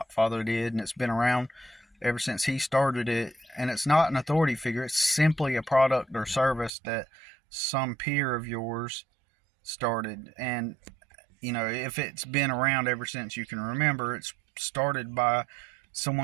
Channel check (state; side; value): drops out; left; at 6.7 s